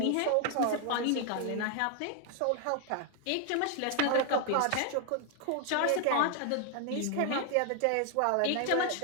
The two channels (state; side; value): different; both; correlation 0.00